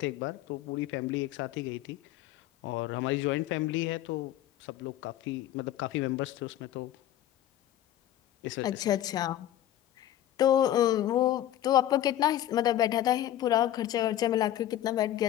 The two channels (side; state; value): right; quieter; 12.4 dB